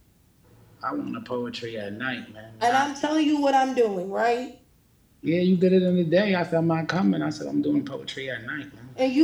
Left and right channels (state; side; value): identical; both; correlation 1.00